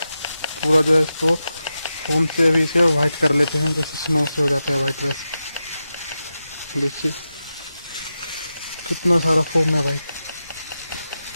जो है इसको फोम से अभी इसे वाइट कर लेते हैं, जैसे स्नो से हो जाता है वाइट। वैसे देखिए कितना सारा फोम है भाई।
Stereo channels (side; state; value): both; inverted; correlation -0.90